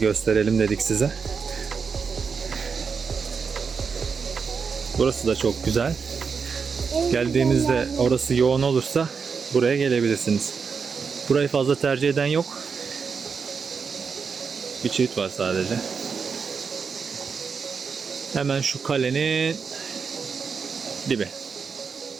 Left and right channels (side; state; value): left; quieter; 5.7 dB